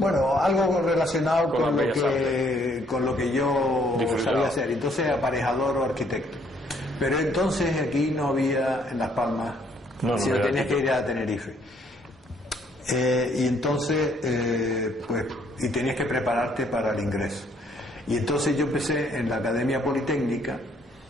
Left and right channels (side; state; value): both; normal; correlation 0.66